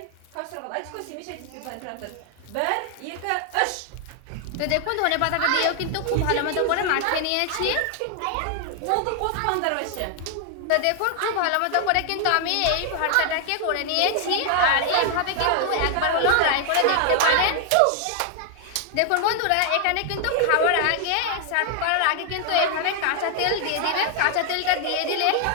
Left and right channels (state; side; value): different; both; correlation 0.00